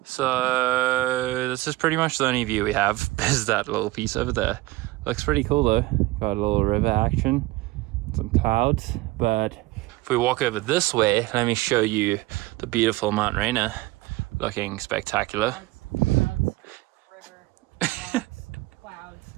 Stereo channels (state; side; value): quieter; left; 19.7 dB